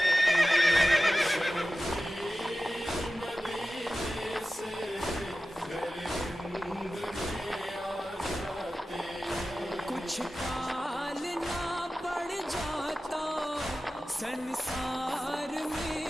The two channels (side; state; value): both; normal; correlation 0.95